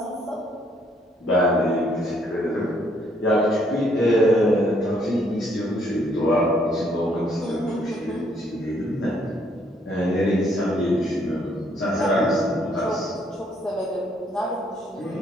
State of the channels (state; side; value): normal; both; correlation 0.68